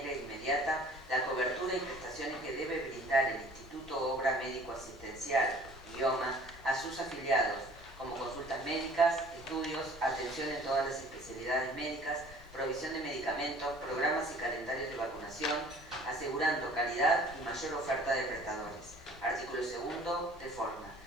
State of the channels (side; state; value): both; normal; correlation 0.51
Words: inmediata la cobertura y prestaciones que debe brindar el Instituto Obra Médico Asistencial, IOMA, a sus afiliados, como consultas médicas, estudios, atención en todas las especialidades médicas, provisión de medicamentos, programas y calendarios de vacunación, asegurando calidad y mayor oferta de prestadores. Artículo segundo, de forma.